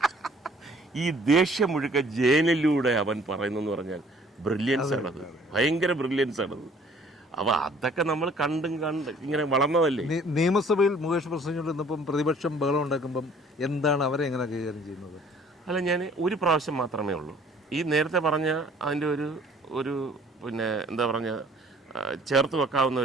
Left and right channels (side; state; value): both; normal; correlation 0.56